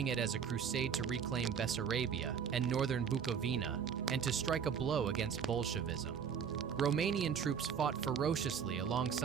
it as a crusade to reclaim Bessarabia and northern Bukovina and to strike a blow against Bolshevism. Romanian troops fought ferociously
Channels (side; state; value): left; quieter; 7.2 dB